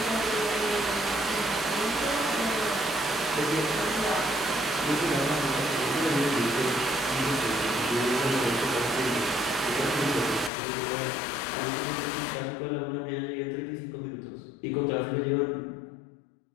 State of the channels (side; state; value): right; drops out; at 10.5 s